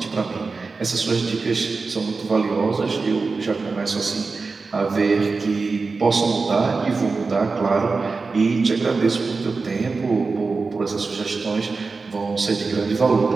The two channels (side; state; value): left; quieter; 4.2 dB